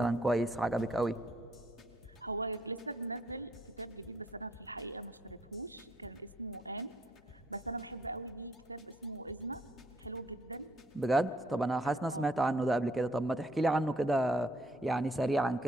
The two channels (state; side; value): noise; left; hum, 28 dB below the sound